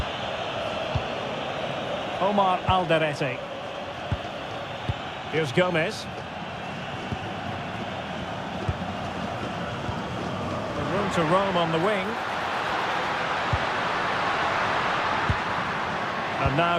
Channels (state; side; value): identical; both; correlation 1.00